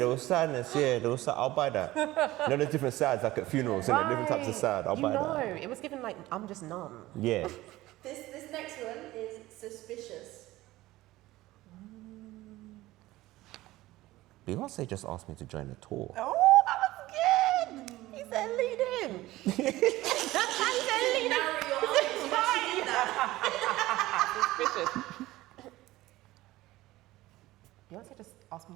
was sadness, yeah. There was I'll buy that. You know, there's different sides, like at funerals, isn't it? Different types of sad. I'll buy that. It was given like, I'm just numb. Yeah. This next one is suspicious. Beyonce just asked me to join the tour. Oh, that was good. He said lead in. He said lead in. Narrow your eyes. You actually do that. Suspicious. Beyonce just asked me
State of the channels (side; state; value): left; quieter; 17.4 dB